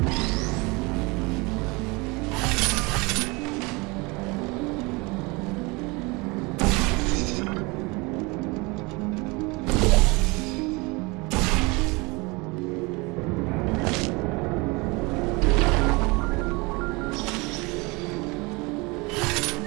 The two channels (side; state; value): left; quieter; 26.1 dB